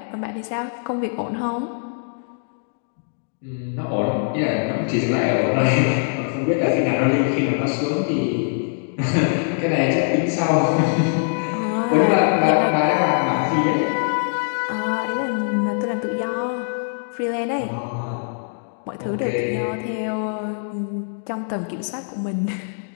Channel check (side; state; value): right; silent; digital silence